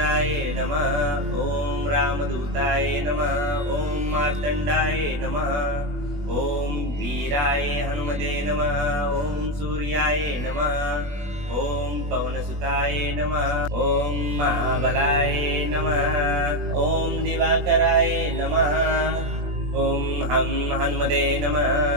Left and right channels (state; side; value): late; left; 21 ms